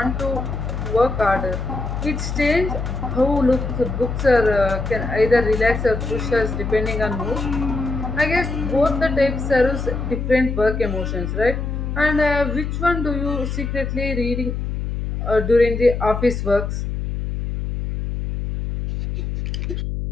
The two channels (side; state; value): left; noise; hum, 3 dB below the sound